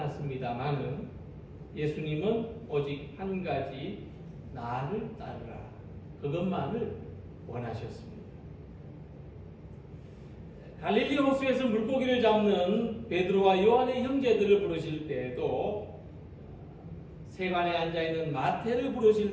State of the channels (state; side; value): identical; both; correlation 1.00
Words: 예수님은 오직 한 가지 나를 따르라, 그것만을 원하셨습니다. 갈릴리 호수에서 물고기를 잡는 베드로와 요한의 형제들을 부르실 때에도, 세관에 앉아있는 마태를